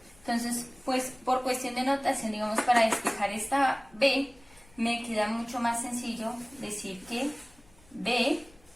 Entonces, pues por cuestión de notación, digamos, para despejar esta B, me queda mucho más sencillo decir que B,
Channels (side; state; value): left; noise; rumble, 28 dB below the sound